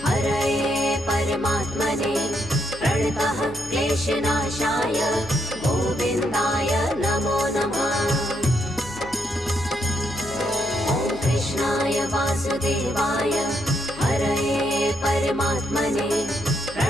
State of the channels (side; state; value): left; noise; hum, 18 dB below the sound